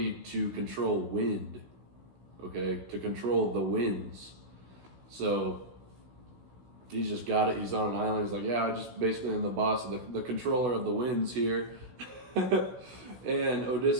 to control wind, okay? To control the winds. So he's just got it. He's on an island. He's like, yeah, I just basically am the boss of the controller of the winds here. And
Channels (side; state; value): left; late; 16 ms